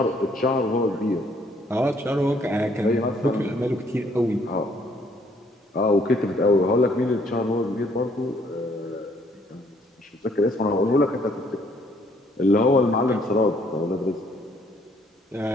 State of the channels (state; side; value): normal; both; correlation 0.65